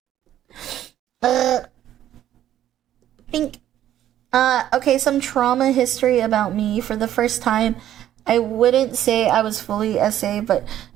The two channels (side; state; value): left; quieter; 11.9 dB